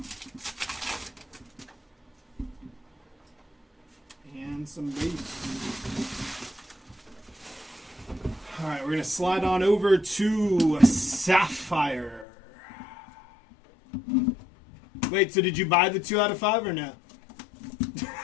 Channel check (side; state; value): right; drops out; at 12.2 s